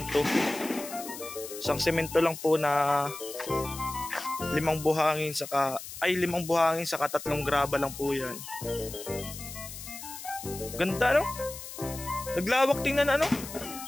lang po na 5 buhangin saka 3 graba lang po yan. Ganda, no? Naglawak, tingnan,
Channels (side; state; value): left; noise; hiss, 11 dB below the sound